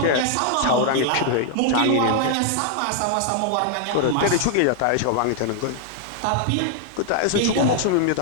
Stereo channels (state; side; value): different; both; correlation 0.00